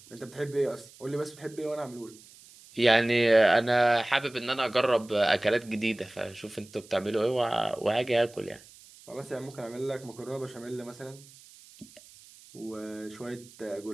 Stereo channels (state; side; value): noise; right; hiss, 22 dB below the sound